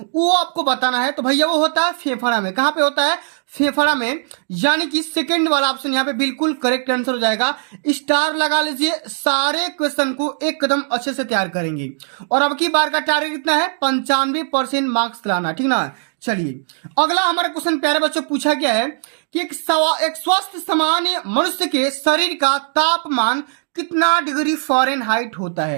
वो आपको बताना है। तो भैया वो होता है फेफड़ा में। कहां पे होता है, फेफड़ा में। यानी कि सेकंड वाला ऑप्शन यहां पे बिल्कुल करेक्ट आंसर हो जाएगा। स्टार लगा लीजिए। सारे क्वेश्चन को एकदम अच्छे से तैयार करेंगे। और अब की बार का टारगेट कितना है, 95% मार्क्स लाना, ठीक ना। चलिए, अगला हमारा क्वेश्चन प्यारे बच्चों पूछा गया है कि एक स्वस्थ सामान्य मनुष्य के शरीर का तापमान कितना डिग्री फ़ारेनहाइट होता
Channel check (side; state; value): left; silent; digital silence